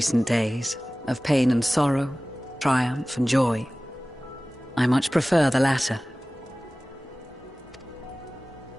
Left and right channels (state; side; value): normal; both; correlation 0.98